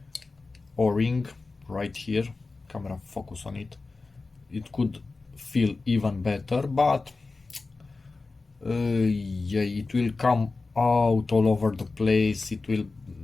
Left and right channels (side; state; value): right; quieter; 3.8 dB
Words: O-ring right here, camera focus on it, it could feel even better, but yeah, it will come out all over the place. It will